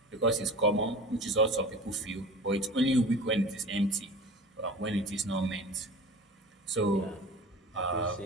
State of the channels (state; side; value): normal; both; correlation 0.37